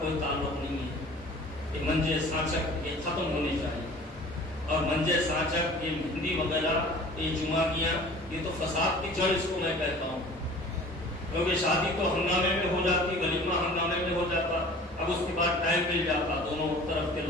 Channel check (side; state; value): both; normal; correlation 0.45